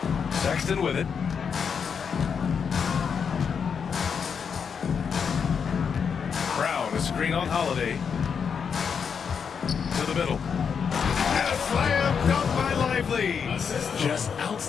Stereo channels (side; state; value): right; quieter; 6.6 dB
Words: Sexton with it. Brown, a screen on Holiday. To the middle. And a slam dunk by Lively. Just